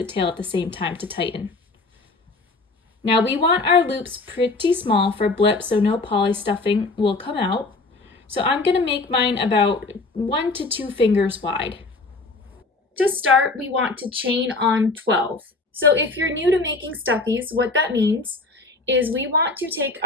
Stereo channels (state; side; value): quieter; right; 3.5 dB